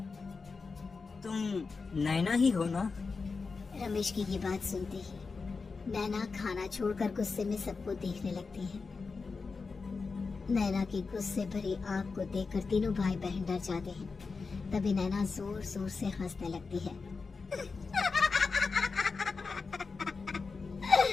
तुम नैना ही हो ना? रमेश की ये बात सुनते ही नैना खाना छोड़कर गुस्से में सबको देखने लगती है। नैना की गुस्से भरी आंख को देखकर तीनों भाई बहन डर जाते हैं। तभी नैना जोर जोर से हंसने लगती है।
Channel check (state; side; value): quieter; right; 4.5 dB